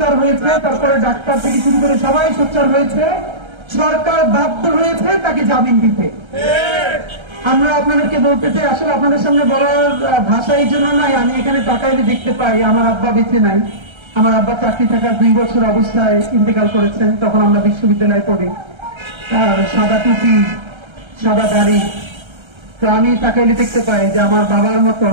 হয়েছে, তারপরে ডাক্তার থেকে শুরু করে সবাই সোচ্চার হয়েছে, সরকার বাধ্য হয়েছে তাকে জামিন দিতে। আমরা আপনাদেরকে বলতে চাই, আসলে আপনাদের সামনে বলার ভাষা এই জন্য নাই, আমি এখানে তাকাইলে দেখতে পাই আমার আব্বা বেঁচে নাই। আমার আব্বা চাকরি থাকার 2 বছর অবস্থায় ইন্তেকাল করেছেন, তখন আমরা বিশ্ববিদ্যালয়ে পড়ি। আর সাদা টুপি, সাদা দাড়ি। তো আমি তাকাইলে দেখতে পাই যে আমার বাবার মতো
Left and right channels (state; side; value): late; left; 1.3 ms